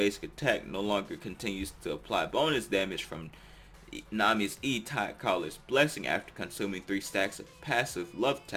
attack no longer continues to apply bonus damage from Nami's E-Tide Caller's Blessing after consuming 3 stacks of passive Love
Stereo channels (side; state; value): both; identical; correlation 1.00